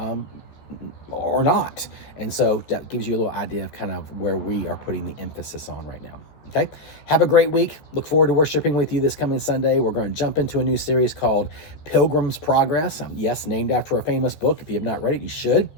or not. And so that gives you a little idea of kind of where we are putting the emphasis on right now. Okay. Have a great week. Look forward to worshiping with you this coming Sunday. We're going to jump into a new series called Pilgrim's Progress. Yes, named after a famous book. If you have not read it, you should.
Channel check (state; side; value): late; right; 14 ms